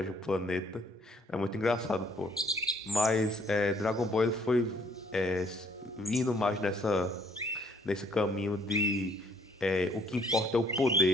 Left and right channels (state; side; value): normal; both; correlation 0.64